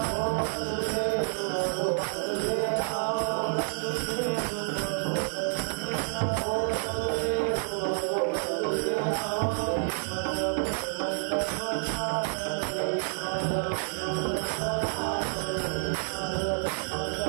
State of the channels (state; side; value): silent; left; 59 dB below the other